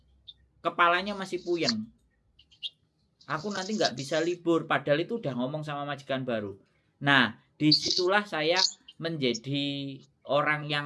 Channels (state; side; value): identical; both; correlation 1.00